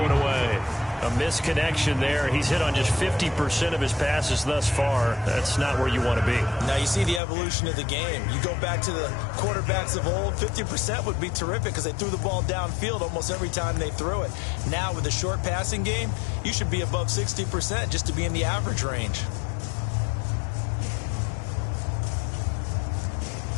it away. A misconnection there. He's hit on just 50% of his passes thus far. That's not where you want to be. Now you see the evolution of the game. You go back to the quarterbacks of old, 50% would be terrific because they threw the ball downfield almost every time they threw it. Now with the short passing game, you should be above 60% just to be in the average range.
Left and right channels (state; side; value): drops out; right; at 7.2 s